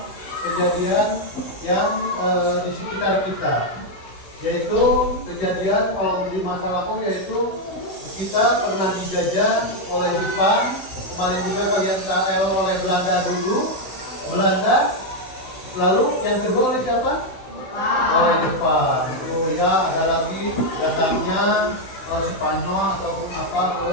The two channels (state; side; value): late; right; 16 ms